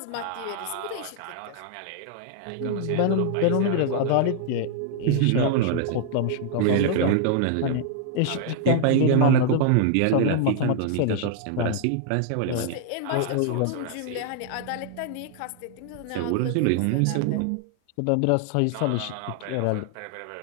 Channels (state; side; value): different; both; correlation 0.00